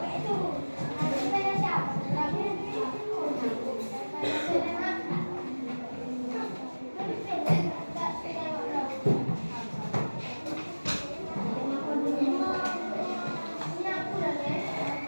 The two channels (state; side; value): inverted; both; correlation -1.00